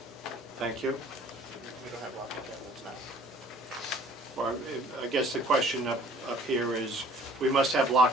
Thank you. We don't have locking cabinets now. Well, I guess the question up here is, we must have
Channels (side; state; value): both; normal; correlation 0.53